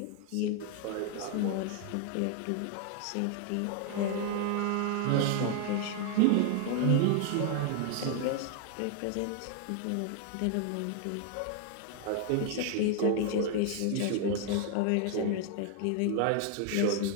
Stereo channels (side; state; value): both; different; correlation 0.00